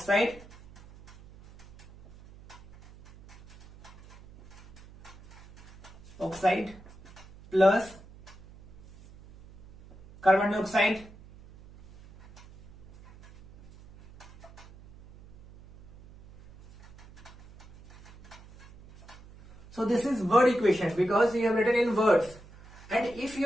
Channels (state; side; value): noise; right; hum, 21 dB below the sound